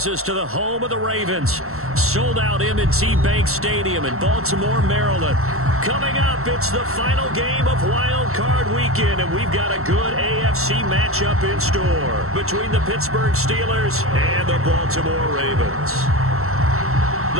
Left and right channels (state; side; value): late; left; 0.63 ms